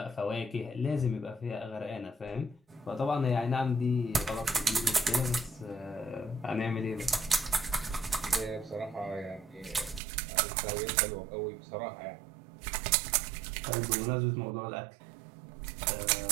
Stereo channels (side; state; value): left; drops out; at 10.0 s